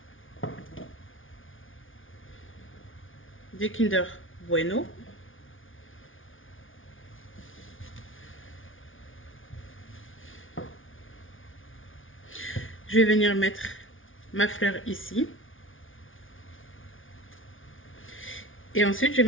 des Kinder Bueno. Je vais venir mettre ma fleur ici. Et ensuite, je vais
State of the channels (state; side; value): late; right; 0.57 ms